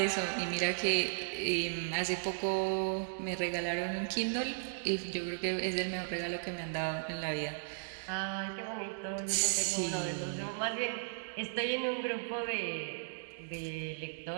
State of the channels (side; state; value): left; silent; digital silence